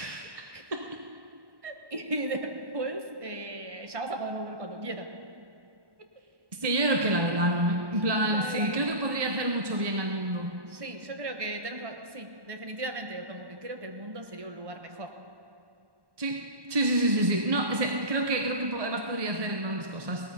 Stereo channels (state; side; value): late; left; 1.1 ms